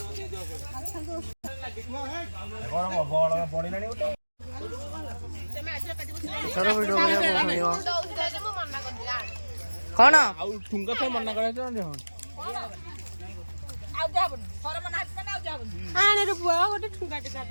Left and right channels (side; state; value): both; inverted; correlation -1.00